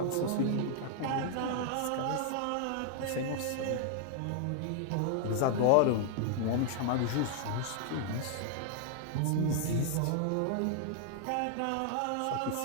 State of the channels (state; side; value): different; both; correlation 0.00